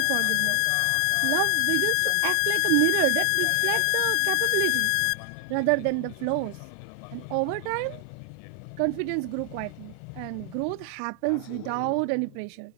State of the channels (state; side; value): different; both; correlation 0.00